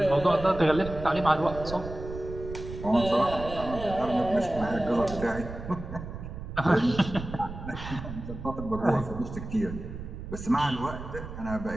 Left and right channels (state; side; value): noise; right; rumble, 10 dB below the sound